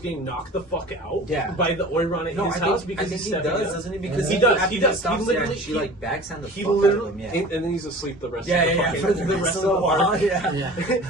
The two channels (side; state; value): both; normal; correlation 0.41